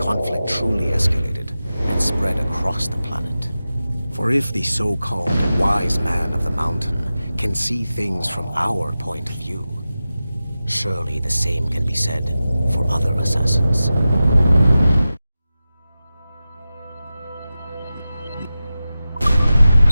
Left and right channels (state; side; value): inverted; both; correlation -0.94